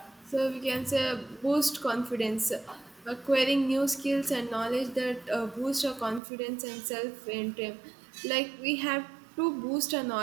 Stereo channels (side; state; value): left; drops out; at 6.2 s